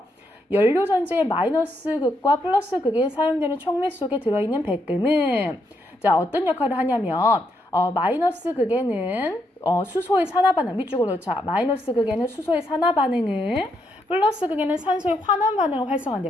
연료 전지의 마이너스 극과 플러스 극에 사용되는 촉매 속에 들어있는 백금은 어떤 역할을 하냐면, 마이너스 극에는 수소의 산화 반응, 밑줄 그어놓자. 마이너스 극에는 수소의 산화 반응을, 플러스 극에는 산소의 환원 반응을 활성화한대.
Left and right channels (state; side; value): normal; both; correlation 0.78